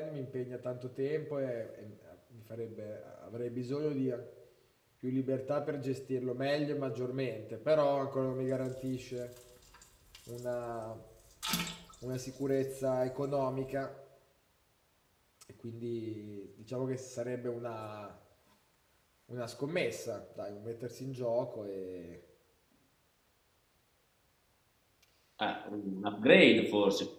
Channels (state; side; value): identical; both; correlation 1.00